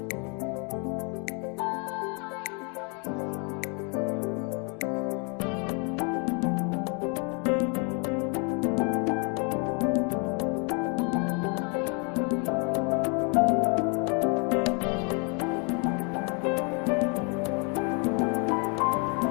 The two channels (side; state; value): right; quieter; 35.7 dB